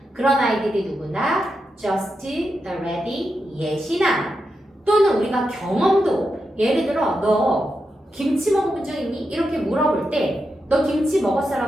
그런 아이들이 누구나 just, already, yet이나 또는 우리가 경험도 예를 들어 너 김치 먹어본 적 있니? 이렇게 물어볼 때 너 김치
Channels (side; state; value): both; normal; correlation 0.87